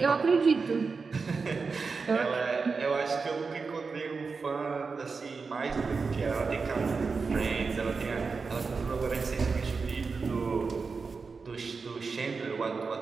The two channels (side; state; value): left; quieter; 4.7 dB